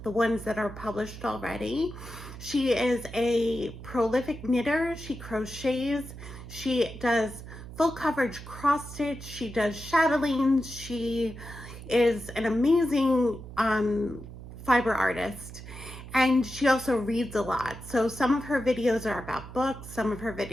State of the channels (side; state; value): right; noise; hum, 13 dB below the sound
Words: the ones that are published already. She is a prolific knitter. She crochets. She does full coverage cross stitch. She does chatelaines. She is an amazing fiber artist, and she also reads a lot. So some of her videos are about books, some of her